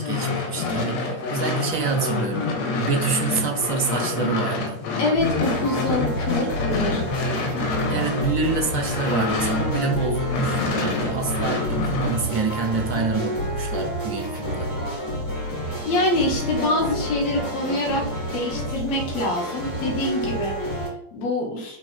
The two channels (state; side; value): late; right; 8.6 ms